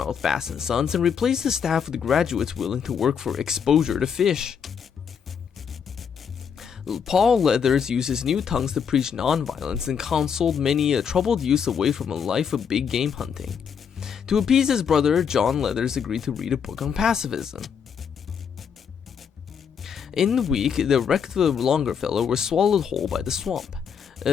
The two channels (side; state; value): right; quieter; 7.1 dB